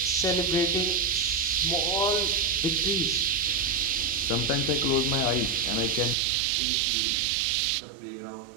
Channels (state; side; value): drops out; left; at 6.2 s